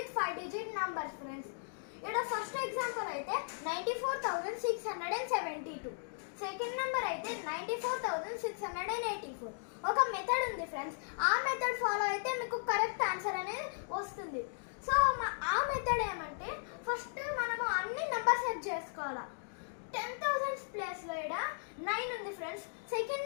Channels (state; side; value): silent; right; digital silence